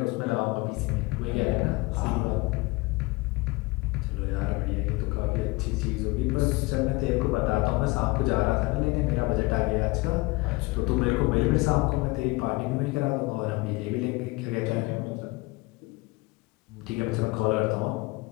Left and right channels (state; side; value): quieter; right; 23.6 dB